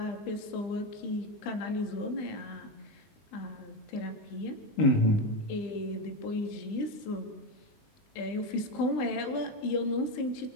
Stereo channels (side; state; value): right; late; 20 ms